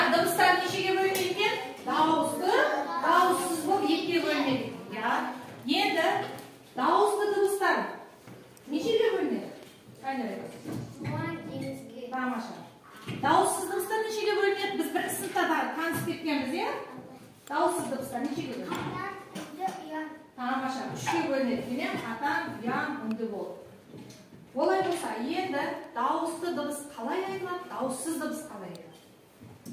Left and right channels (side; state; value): both; identical; correlation 1.00